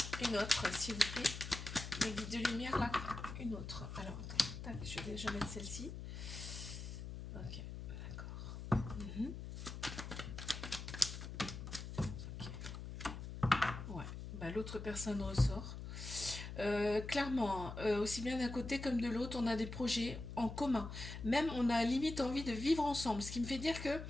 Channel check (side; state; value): left; noise; hum, 8 dB below the sound